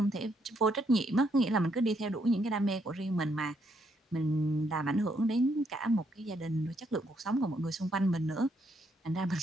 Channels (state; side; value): normal; both; correlation 0.74